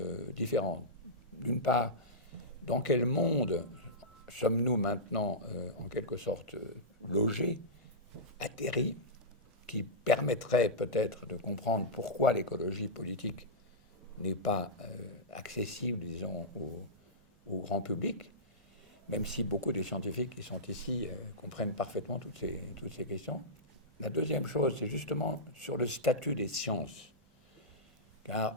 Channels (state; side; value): normal; both; correlation -0.14